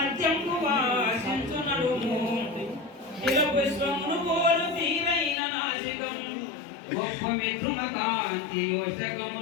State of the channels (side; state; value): right; drops out; at 5.4 s